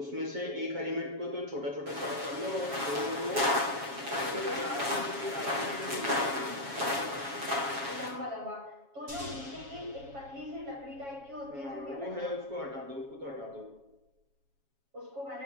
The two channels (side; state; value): left; late; 7.2 ms